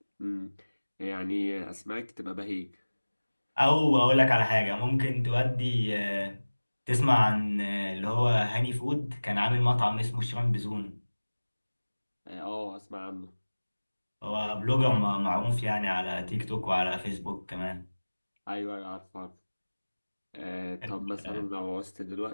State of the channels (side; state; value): both; inverted; correlation -1.00